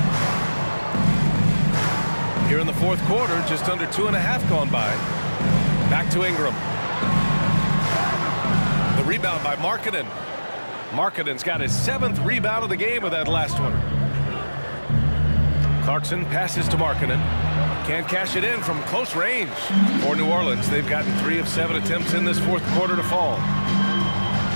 Here in the fourth quarter, just under 2.5 gone by. Back to Ingram. The rebound by Markkanen. Markkanen's got his 7th rebound of the game with that last one. Clarkson passes to Markkanen. Can't cash it in from close range. For New Orleans, they've gotten 3 of 7 attempts in this fourth quarter to fall.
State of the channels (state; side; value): inverted; both; correlation -1.00